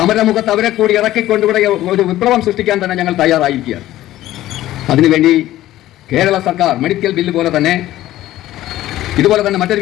അവരെ കൂടി ഇറക്കിക്കൊണ്ട് ഇവിടെ ഒരു വിപ്ലവം സൃഷ്ടിക്കാൻ തന്നെ ഞങ്ങൾ തയ്യാറായിരിക്കുകയാണ്. അതിനുവേണ്ടി കേരള സർക്കാർ മെഡിക്കൽ ബില്ല് പോലെ തന്നെ ഇതുപോലെ തന്നെ മറ്റൊരു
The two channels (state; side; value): quieter; right; 14.6 dB